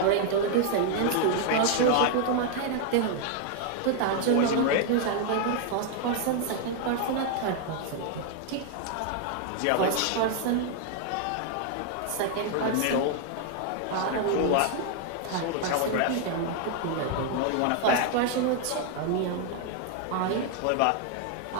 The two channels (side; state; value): both; different; correlation 0.00